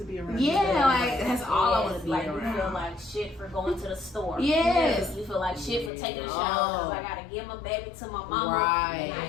be around your baby. Yeah, like that's all I want to be like around. you feel like shit for going to the store. Yes. You feel like shit for taking a shower Oh. because I gotta give my baby to my mama. Right. And I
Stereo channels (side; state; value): right; drops out; at 5.9 s